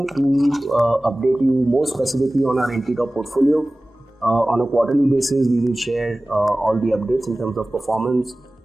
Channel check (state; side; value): normal; both; correlation 0.97